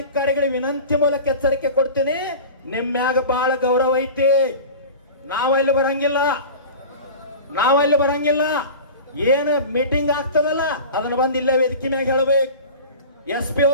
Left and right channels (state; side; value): inverted; both; correlation -0.35